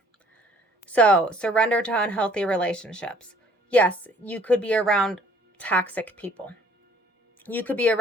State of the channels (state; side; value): normal; both; correlation 0.57